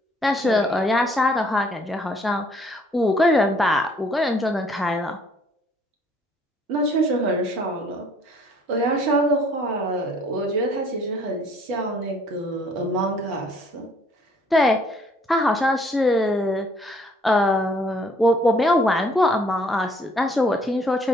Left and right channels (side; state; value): both; normal; correlation 0.60